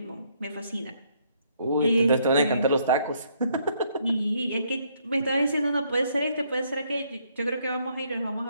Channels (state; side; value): inverted; both; correlation -0.70